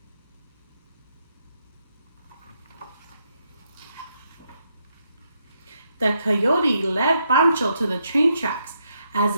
The coyote led Pancho to the train tracks. As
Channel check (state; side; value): inverted; both; correlation -0.78